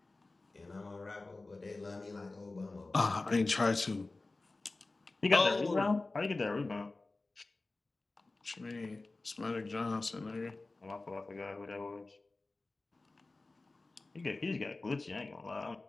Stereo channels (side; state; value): right; quieter; 3.3 dB